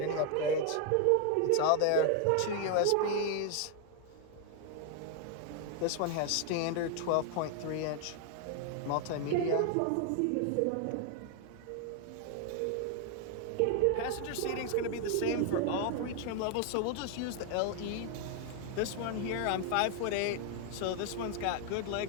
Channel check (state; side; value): different; both; correlation 0.00